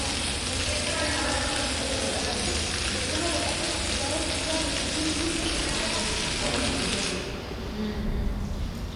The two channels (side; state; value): both; identical; correlation 1.00